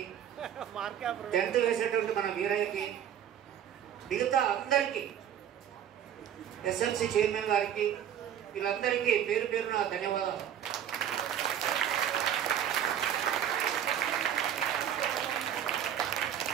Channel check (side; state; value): left; quieter; 9.7 dB